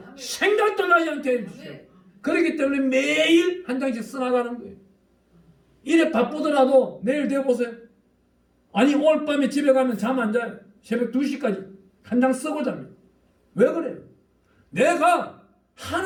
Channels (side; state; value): both; identical; correlation 1.00